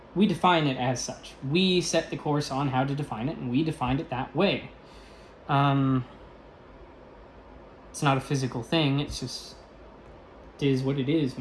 We define it as such. We set the course on how to define it, and we defined it that way. It's not a physical thing. It's just, it is what it is,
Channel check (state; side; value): identical; both; correlation 1.00